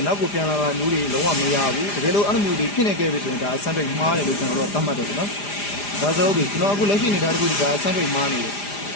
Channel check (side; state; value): right; late; 4.9 ms